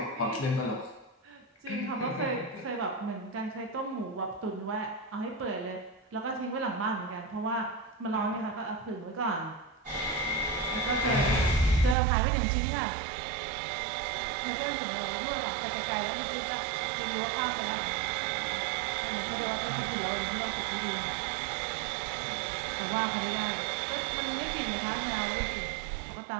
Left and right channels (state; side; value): drops out; left; at 12.0 s